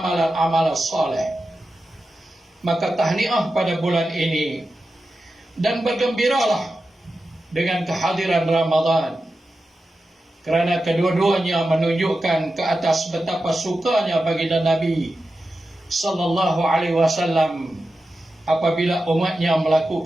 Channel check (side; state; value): both; normal; correlation 0.92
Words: soleh. Maka tahniah pada bulan ini, dan bergembiralah dengan kehadiran Ramadan, kerana kedua-duanya menunjukkan ke atas betapa sukanya baginda Nabi sallallahu alaihi wasallam apabila umatnya